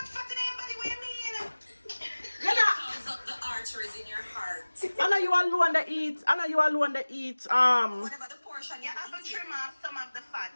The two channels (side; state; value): both; inverted; correlation -1.00